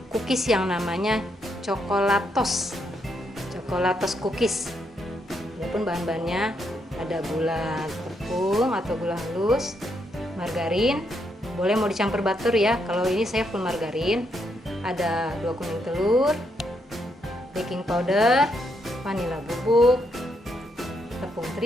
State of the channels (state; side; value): normal; both; correlation 0.78